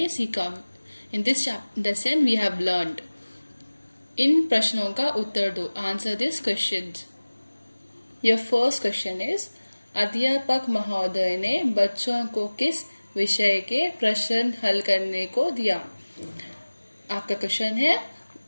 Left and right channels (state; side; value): inverted; both; correlation -1.00